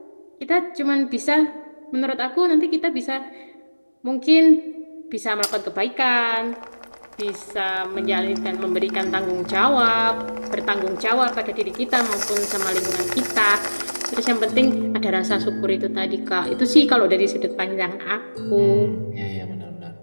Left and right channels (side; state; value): both; inverted; correlation -1.00